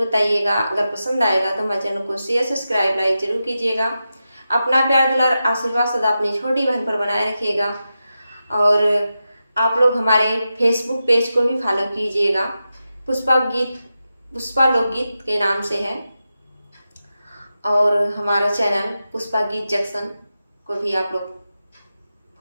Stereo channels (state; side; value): inverted; both; correlation -0.91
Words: बताइएगा। अगर पसंद आएगा तो हमारे चैनल को शेयर सब्सक्राइब लाइक जरूर कीजिएगा। अपना प्यार दुलार आशीर्वाद सदा अपनी छोटी बहन पर बनाए रखिएगा। और आप लोग हमारे फेसबुक पेज को भी फॉलो कीजिएगा। पुष्पा लोकगीत के नाम से है। और हमारा चैनल पुष्पा गीत जंक्शन को भी आप लोग